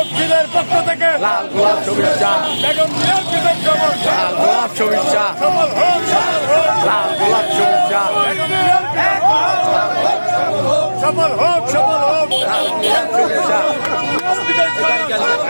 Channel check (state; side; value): inverted; both; correlation -1.00